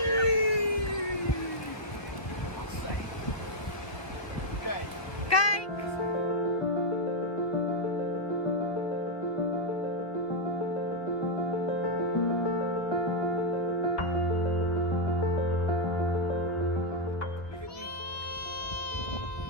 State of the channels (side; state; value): right; late; 1.2 ms